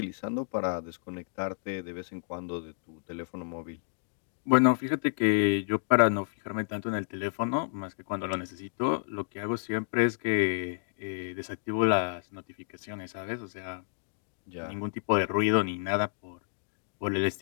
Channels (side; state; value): right; silent; digital silence